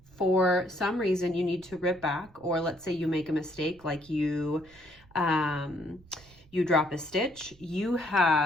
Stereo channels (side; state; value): right; noise; rumble, 26 dB below the sound